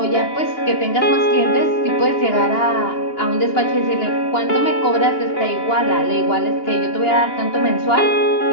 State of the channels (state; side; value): late; right; 2.9 ms